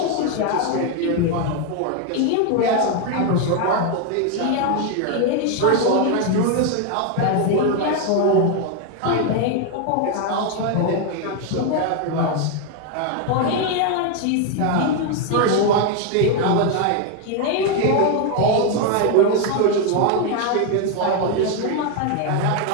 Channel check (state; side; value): different; both; correlation 0.01